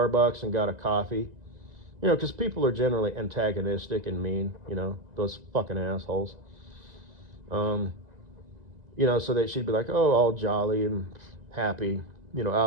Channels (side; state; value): left; late; 2.0 ms